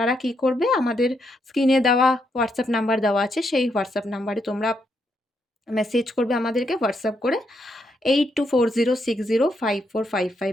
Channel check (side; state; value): both; normal; correlation 0.78